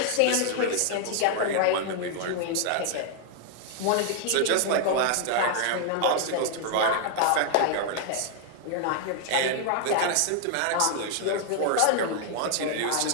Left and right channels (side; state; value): both; different; correlation 0.00